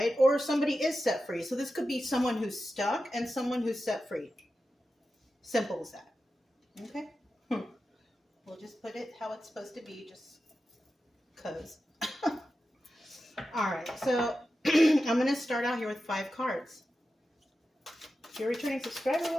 Or somebody is set free. So this could be someone who's stuck and someone who's set free. Simple as that. Okay? We'll just put it how it's supposed to be, just because. All right, so I'm going to start out here with 5 cards. If you're a returning subscriber,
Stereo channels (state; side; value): normal; both; correlation 0.92